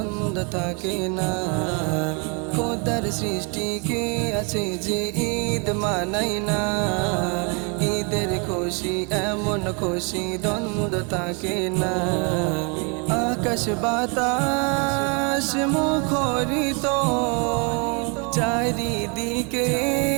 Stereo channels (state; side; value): quieter; left; 33.8 dB